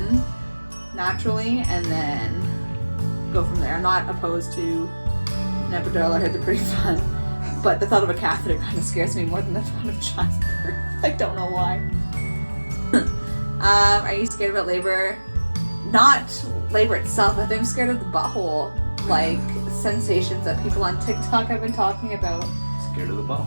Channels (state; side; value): inverted; both; correlation -1.00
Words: naturally and then go from there. I'm not opposed to an epidural. I heard they're pretty fun, but the thought of a catheter kind of scares me more than the thought of childbirth. I don't know why. Are you scared about labor? Not labor itself. I think I'm scared of the butthole, like sensations that people on TikTok have been talking about. Scared of the